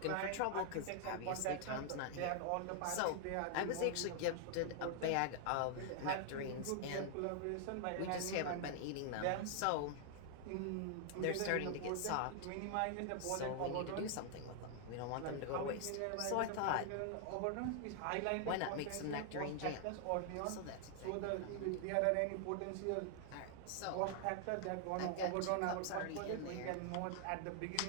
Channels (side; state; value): both; different; correlation 0.00